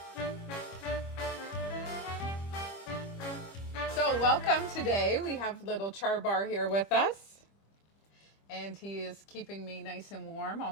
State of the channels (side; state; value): right; late; 25 ms